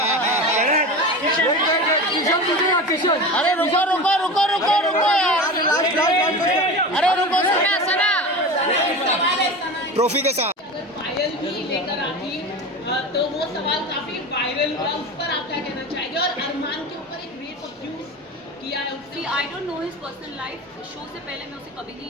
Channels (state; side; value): normal; both; correlation 0.29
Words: अरे रुको यार। अरे रुको सना ट्रॉफी के साथ अगर पायल भी लेकर आती तो वो सवाल काफी वायरल हुआ, उस पर आप क्या कहना चाहेंगे? और अरमान के ऊपर एक रेप अब्यूज किया है उसने। आई don't know his personal life, show से पहले मैं उसे कभी